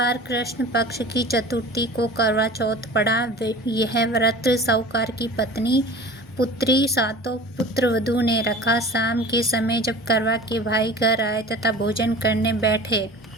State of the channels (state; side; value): normal; both; correlation 0.40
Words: कृष्ण पक्ष की चतुर्थी को करवा चौथ पड़ा। यह व्रत साहूकार की पत्नी, पुत्री, 7 पुत्र वधू ने रखा। शाम के समय जब करवा के भाई घर आए तथा भोजन करने बैठे,